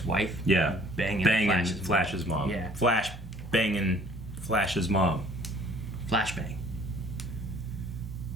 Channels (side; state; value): both; normal; correlation 0.56